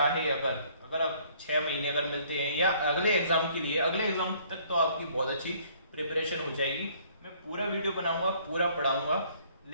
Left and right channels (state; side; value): inverted; both; correlation -0.60